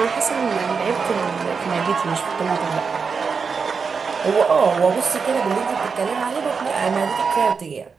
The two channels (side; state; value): left; quieter; 5.4 dB